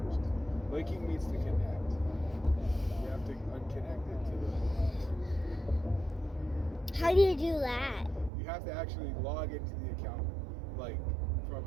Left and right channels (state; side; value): drops out; left; at 8.3 s